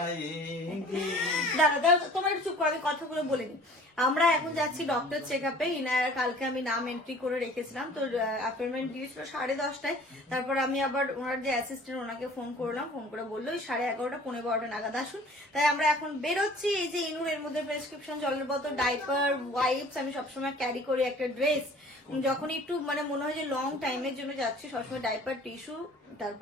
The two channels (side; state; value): both; normal; correlation 0.49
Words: দাদা তোমার একটু চুপ করো, আমি কথাগুলো বলে নি। আমরা এখন যাচ্ছি ডক্টর চেক আপে। ইনায়ার কালকে আমি নাম এন্ট্রি করে রেখেছিলাম, তো অ্যাপয়েন্টমেন্ট দিয়েছিল 10:30টায়। তারপর আমি আবার ওনার যে অ্যাসিস্ট্যান্ট ওনাকে ফোন করলাম, ফোন করে বললো 11:30 11:15 নাগাদ আসুন। তাই আমরা এখন বেরোচ্ছি। এই যে ইনুর এর মধ্যে প্রেসক্রিপশন, জলের বোতল, ডাইপার, ওয়াইপস আমি সবসময় ক্যারি করি, একটা ড্রেস। যখন একটু মনে হয় যে লং টাইমের জন্য যাচ্ছি, সবসময় ডাইপার, টিস্যু,